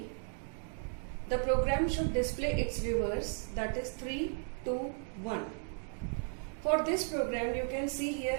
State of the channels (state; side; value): silent; left; 54 dB below the other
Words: The program should display its reverse, that is 3, 2, 1. For this program you can see here